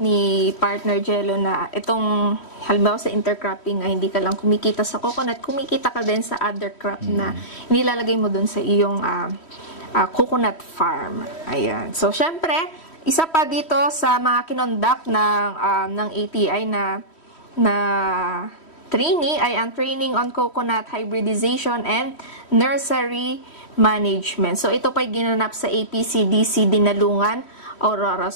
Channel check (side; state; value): right; late; 3.1 ms